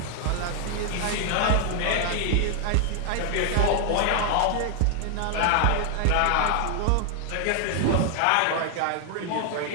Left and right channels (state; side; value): different; both; correlation 0.00